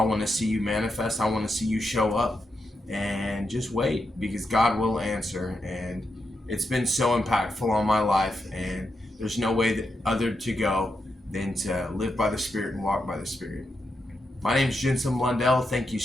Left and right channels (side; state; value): both; normal; correlation 0.85